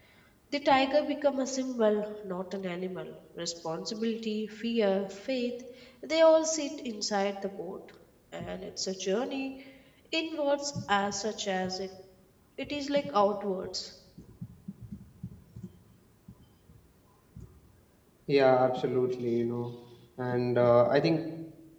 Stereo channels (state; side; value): identical; both; correlation 1.00